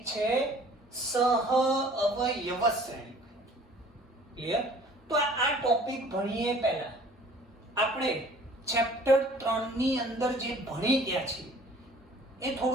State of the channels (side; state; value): both; normal; correlation 0.51